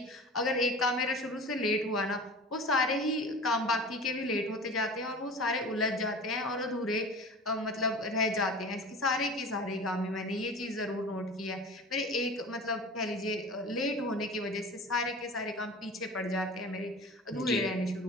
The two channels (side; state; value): both; normal; correlation 0.36